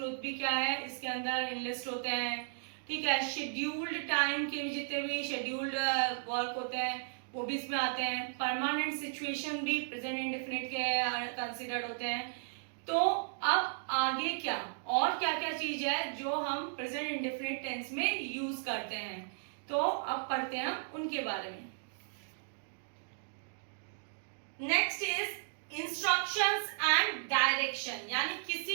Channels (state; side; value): silent; left; digital silence